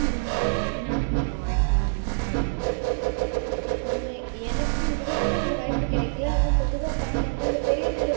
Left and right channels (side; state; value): left; silent; digital silence